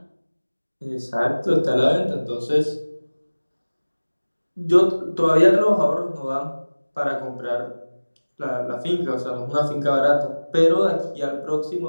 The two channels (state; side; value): inverted; both; correlation -1.00